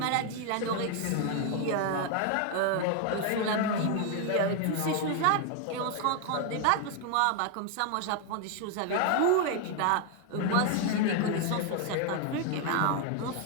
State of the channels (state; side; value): different; both; correlation 0.00